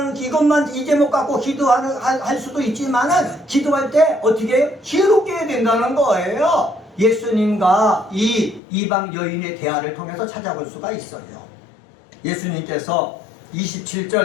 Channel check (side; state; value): right; drops out; at 8.6 s